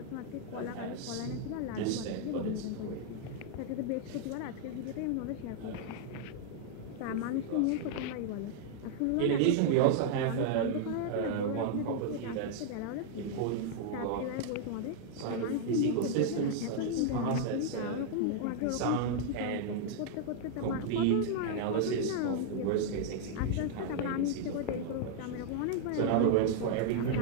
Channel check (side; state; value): both; different; correlation -0.01